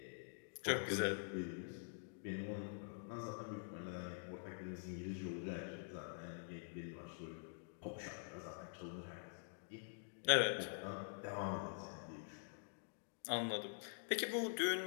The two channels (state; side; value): silent; right; digital silence